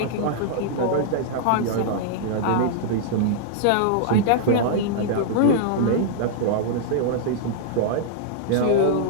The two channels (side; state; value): both; different; correlation -0.01